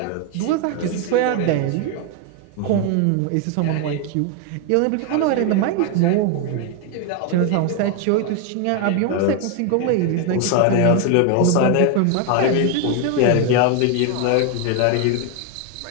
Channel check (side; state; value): both; different; correlation 0.01